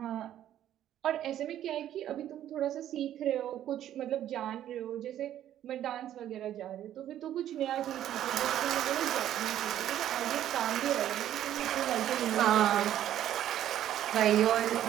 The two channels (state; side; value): quieter; left; 11.6 dB